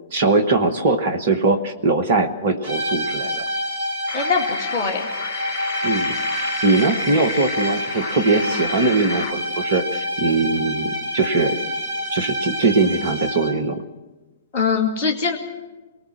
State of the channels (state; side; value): inverted; both; correlation -0.40